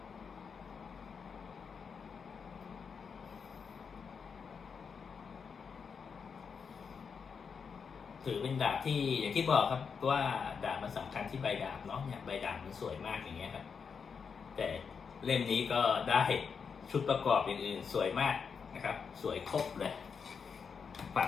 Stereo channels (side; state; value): right; quieter; 6.0 dB